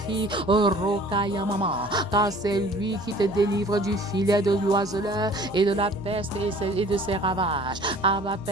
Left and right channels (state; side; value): noise; right; hum, 19 dB below the sound